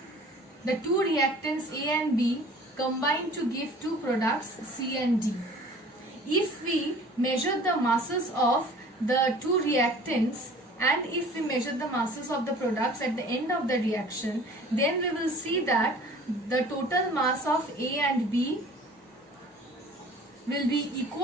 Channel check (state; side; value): normal; both; correlation 0.47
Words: the two reactants A and B combine to give two products C and D. If we measure the masses of the two reactants and if we measure the masses of the products at the end of the reaction, then we will see that the total mass of A and B will be